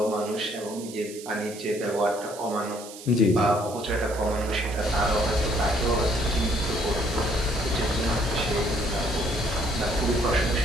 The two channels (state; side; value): noise; right; hiss, 15 dB below the sound